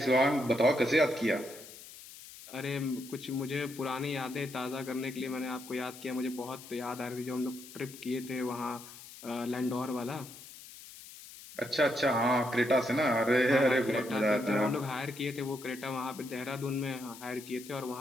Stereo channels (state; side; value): noise; left; hiss, 16 dB below the sound